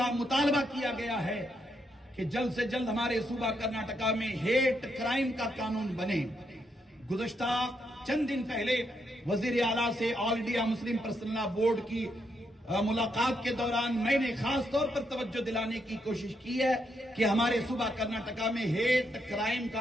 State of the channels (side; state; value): both; normal; correlation 0.79